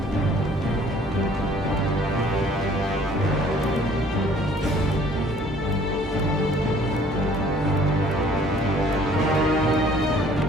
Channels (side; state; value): both; normal; correlation 0.56